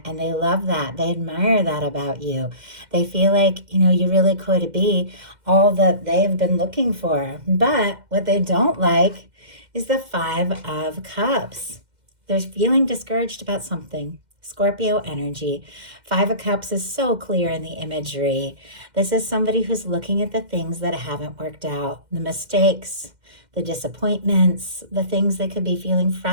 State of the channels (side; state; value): left; late; 2.1 ms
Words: And they love that. They admire that about you. They feel like, you really could be all that they've been looking for. But what they don't like is the Five of Cups. They're feeling discouraged about something. Scorpio energy. Five of Cups is so clear in the imagery. This is somebody who's looking at the things that haven't worked out, the mistakes, the disappointments, the things they could be feeling